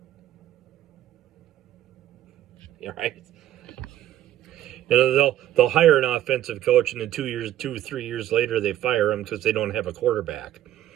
Right? They'll hire an offensive coach, and then 2 or 3 years later they fire him because they don't have a quarterback.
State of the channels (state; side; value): quieter; left; 12.5 dB